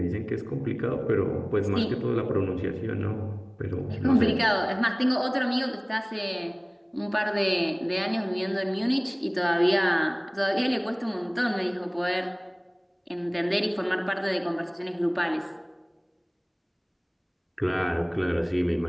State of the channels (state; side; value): identical; both; correlation 1.00